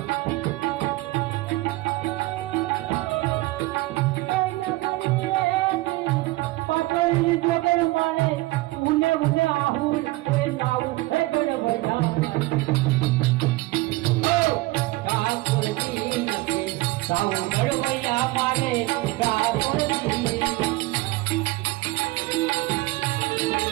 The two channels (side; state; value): left; quieter; 20.3 dB